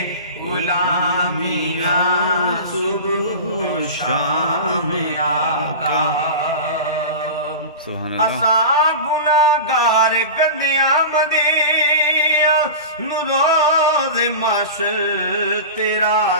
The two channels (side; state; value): both; inverted; correlation -0.30